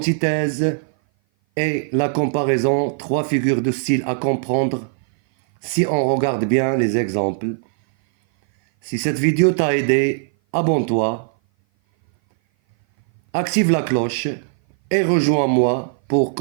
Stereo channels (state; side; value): silent; left; 58 dB below the other